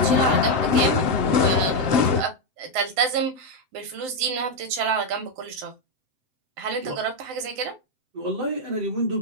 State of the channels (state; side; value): late; left; 7.7 ms